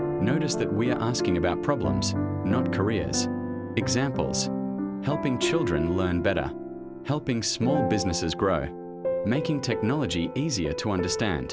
that we are asking about problems, not careers. Examples: helping children learn better, helping small businesses grow, making technology easier to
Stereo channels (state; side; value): identical; both; correlation 1.00